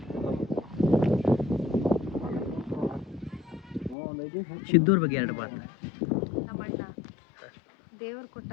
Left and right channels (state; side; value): drops out; right; at 4.0 s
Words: ಸಿದ್ದೂರ್ ಬಗ್ಗೆ 2 ಮಾತು. ನಮ್ಮ ಅಣ್ಣ ದೇವ್ರ ಕೊಟ್ಟ